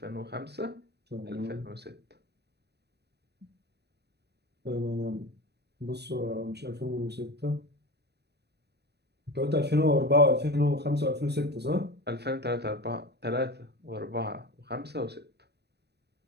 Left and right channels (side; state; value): left; late; 0.48 ms